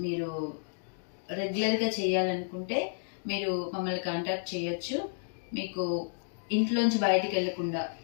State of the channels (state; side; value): silent; right; digital silence